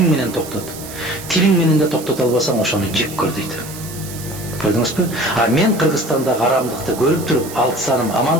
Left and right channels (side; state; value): right; noise; hiss, 13 dB below the sound